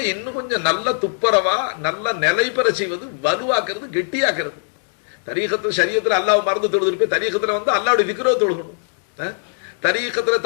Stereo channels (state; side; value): silent; right; digital silence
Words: இன்னும் கொஞ்சம் நல்ல துப்பரவா நல்ல நிலை பெற செய்வது, வலுவாக்குறது, கெட்டியாக்குறது. தரீகத்துல ஷரியத்துல அல்லாஹ் மறந்து தொழுது இருப்பேன், தரீகத்துல வந்து அல்லாஹ்வுடைய திக்ரை தொழுகணும். தரீகத்துல